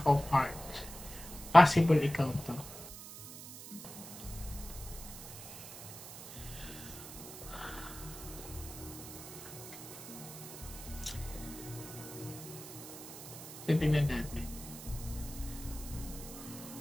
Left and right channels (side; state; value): right; noise; hiss, 12 dB below the sound